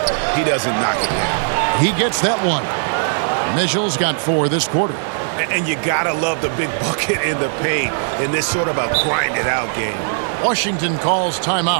he doesn't knock it down. He gets that one. Mitchell's got 4 this quarter. And you gotta love the big bucket in the paint in this sort of a grind-it-out game. Washington calls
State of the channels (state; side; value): silent; left; digital silence